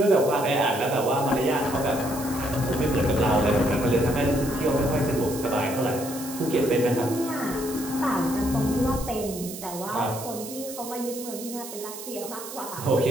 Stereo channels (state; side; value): noise; right; hiss, 11 dB below the sound